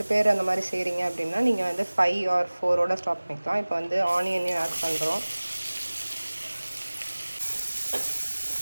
பேர் அந்த மாதிரி செய்கிறீங்க அப்படின்னா நீங்கள் வந்து 5 or 4ஓட ஸ்டாப் பண்ணிக்கலாம். இப்போ வந்து ஆனியனையும் ஆட் பண்ணுறோம்.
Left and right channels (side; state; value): both; inverted; correlation -1.00